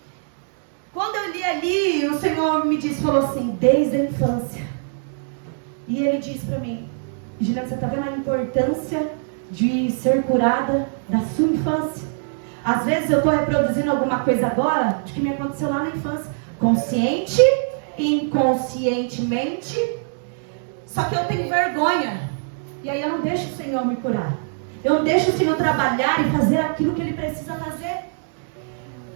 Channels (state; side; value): silent; left; digital silence